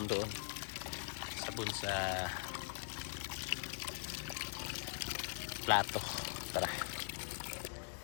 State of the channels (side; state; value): right; silent; digital silence